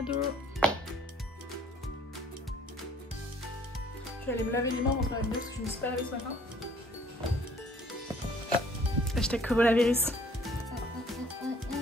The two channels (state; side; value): normal; both; correlation 0.58